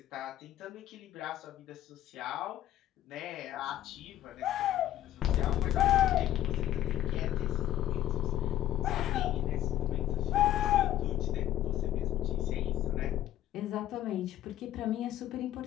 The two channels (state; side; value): quieter; right; 12.6 dB